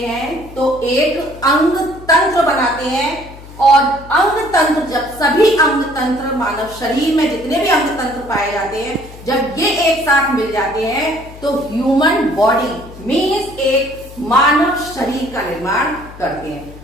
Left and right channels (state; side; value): noise; left; hum, 17 dB below the sound